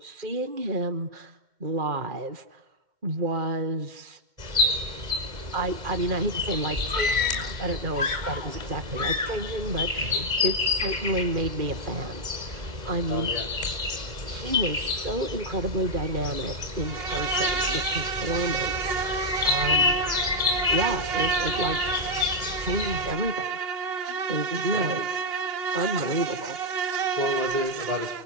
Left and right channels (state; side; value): late; left; 2.1 ms